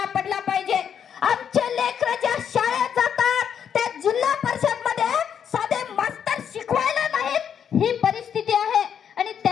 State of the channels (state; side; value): quieter; right; 8.1 dB